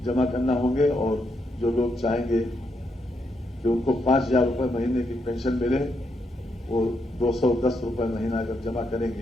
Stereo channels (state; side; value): normal; both; correlation 0.79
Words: जमा करना होंगे, और जो लोग चाहेंगे कि उनको 5000 रुपए महीने की पेंशन मिले वो 210 रुपए महीना अगर जमा